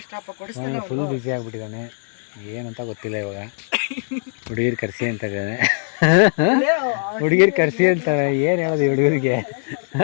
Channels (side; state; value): right; silent; digital silence